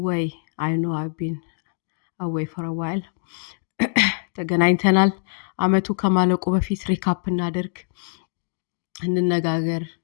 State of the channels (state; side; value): silent; right; digital silence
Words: ወይ? አይ ኖ አይ ቢን አዌይ ፎር አ ዋይል ተገናኝተናል። አመቱ ከማለቁ በፊት ሪካፕ እናደርግ፣ እንነጋገር።